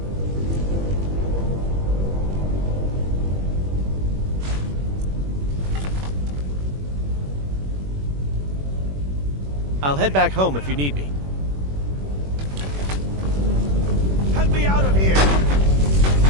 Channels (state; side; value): late; left; 21 ms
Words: I'll head back home if you need me. Help me out of here!